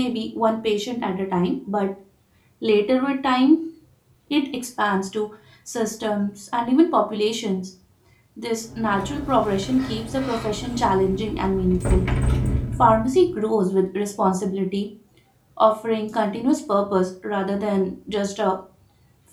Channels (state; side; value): identical; both; correlation 1.00